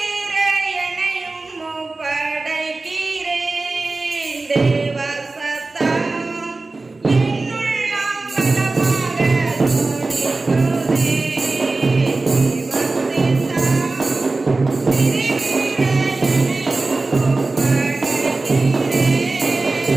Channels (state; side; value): quieter; left; 3.4 dB